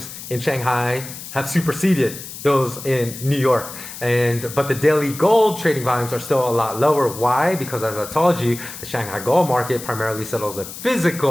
in Shanghai have superseded those in New York, but the daily gold trading volumes are still a lot lower. Why? Because as I told you, the Shanghai gold market primarily settles in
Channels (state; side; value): noise; left; hiss, 12 dB below the sound